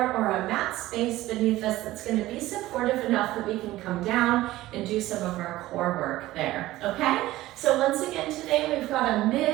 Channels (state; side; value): quieter; left; 16.5 dB